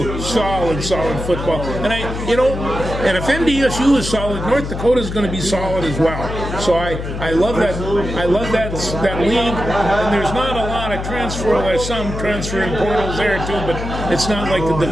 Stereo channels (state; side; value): noise; left; hum, 6 dB below the sound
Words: solid football, and and if NDSU is solid, North Dakota is going to be solid as well. So I love that league, and there's not a lot of transfer. There's some transferring portals there too, but it's not like the